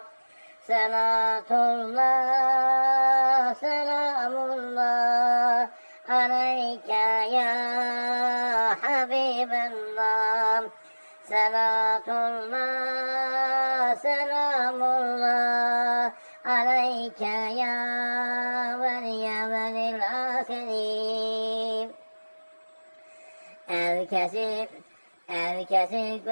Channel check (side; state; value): both; inverted; correlation -1.00